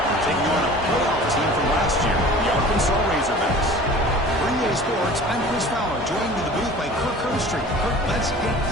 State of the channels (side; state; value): both; normal; correlation 0.43